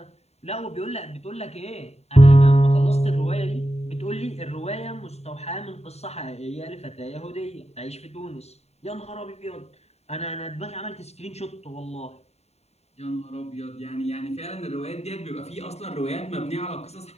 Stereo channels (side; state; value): right; late; 0.31 ms